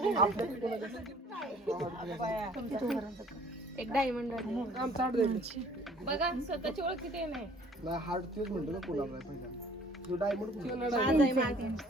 एक डायमंड बघा स्वतःची ओळख किती नाही हार्ट तेच म्हणतो ना कोणाला पहिला जो डायमंड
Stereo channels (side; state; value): both; normal; correlation 0.54